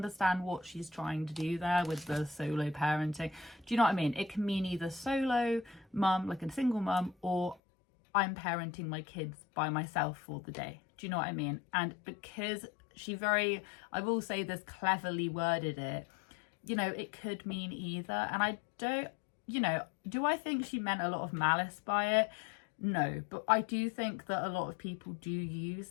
what she's trying to do there with the solo parenting. Do you know what I mean? It can mean either solo mum, like a single mum, or I'm parenting my kids by myself for the day. Do you know what I mean? And because I will say this, cleverly worded it, you know, it could mean either. And I don't, you know, do I think she meant a lot of malice by it? No, but I do think that a lot of people do use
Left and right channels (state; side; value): drops out; right; at 7.6 s